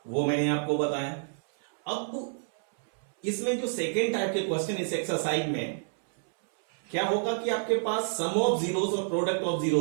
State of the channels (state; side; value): silent; left; 59 dB below the other